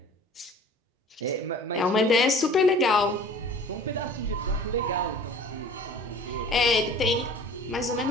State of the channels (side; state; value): both; normal; correlation 0.46